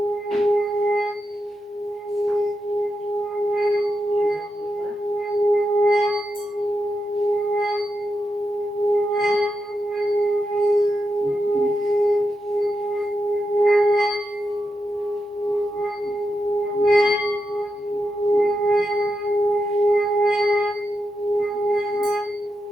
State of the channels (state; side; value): normal; both; correlation 0.86